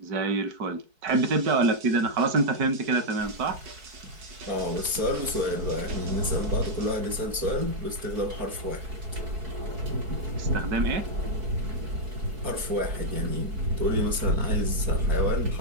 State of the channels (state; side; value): late; left; 4.6 ms